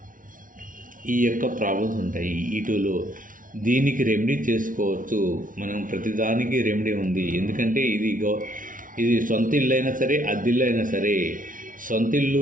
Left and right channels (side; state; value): left; late; 0.39 ms